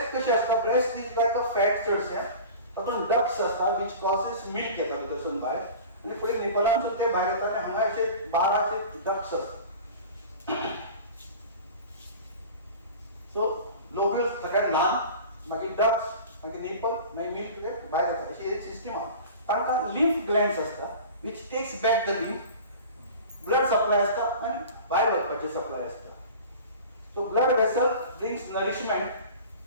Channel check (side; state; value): both; inverted; correlation -0.38